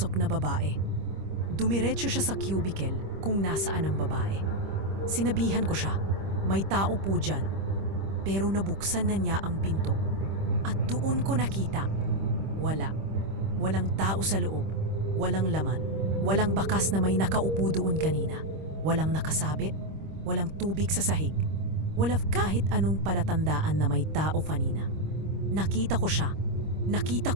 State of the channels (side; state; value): left; late; 25 ms